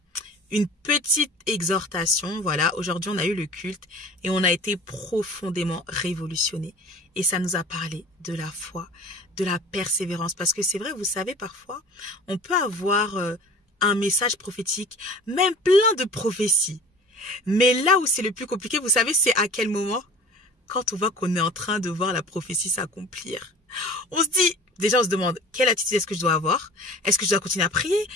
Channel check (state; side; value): normal; both; correlation 0.42